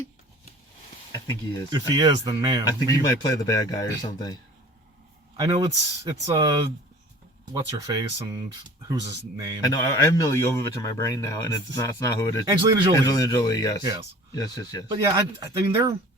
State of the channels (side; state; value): both; normal; correlation 0.45